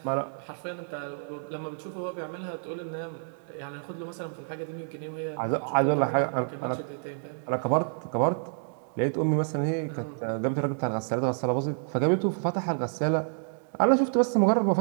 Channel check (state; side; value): silent; left; 58 dB below the other